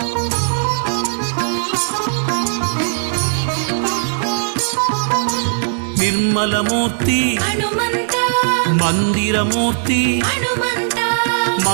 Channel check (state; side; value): silent; left; digital silence